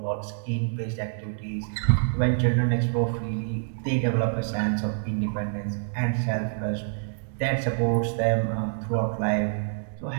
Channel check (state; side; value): silent; left; digital silence